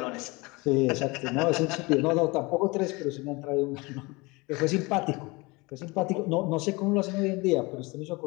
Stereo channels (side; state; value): right; quieter; 25.0 dB